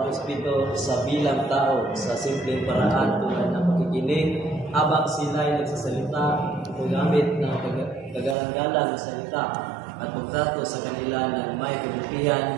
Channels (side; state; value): left; drops out; at 8.3 s